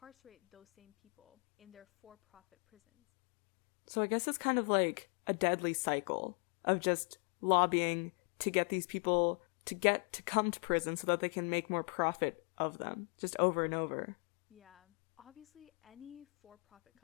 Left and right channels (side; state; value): right; quieter; 36.2 dB